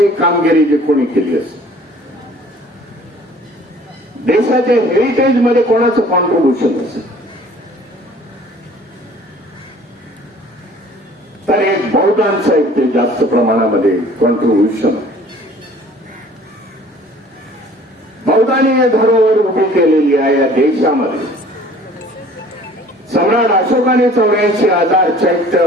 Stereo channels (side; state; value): both; normal; correlation 0.51